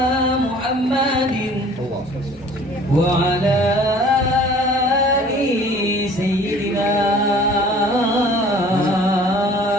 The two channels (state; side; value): normal; both; correlation 0.50